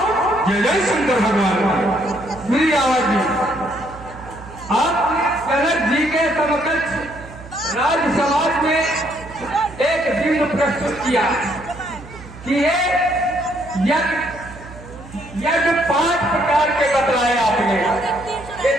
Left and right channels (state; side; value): noise; right; hum, 17 dB below the sound